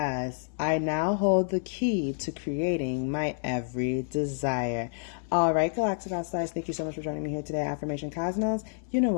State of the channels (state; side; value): silent; right; 59 dB below the other